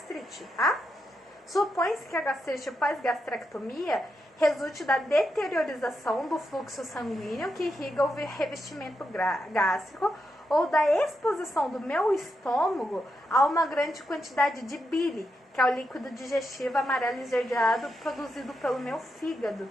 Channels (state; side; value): normal; both; correlation 0.84